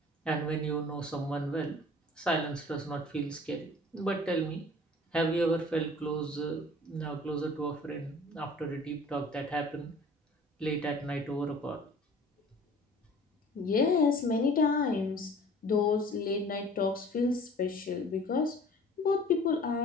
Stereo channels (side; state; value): both; normal; correlation 0.48